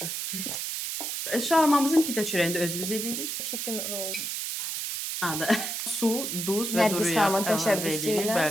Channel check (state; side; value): noise; right; hiss, 3 dB below the sound